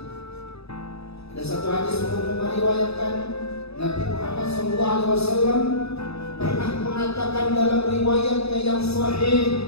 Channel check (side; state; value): right; late; 0.78 ms